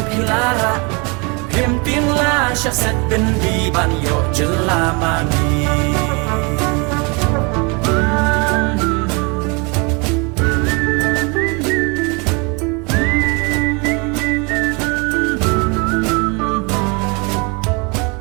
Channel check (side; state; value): left; quieter; 30.7 dB